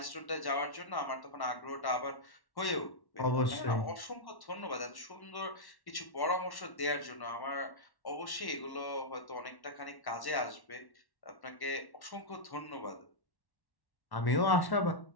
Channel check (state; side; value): late; right; 1.1 ms